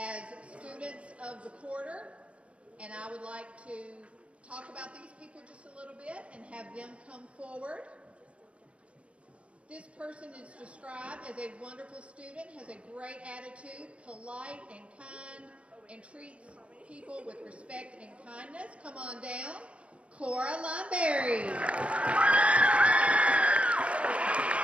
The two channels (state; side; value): late; left; 0.061 ms